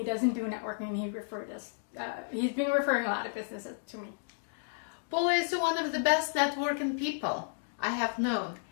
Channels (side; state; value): right; silent; digital silence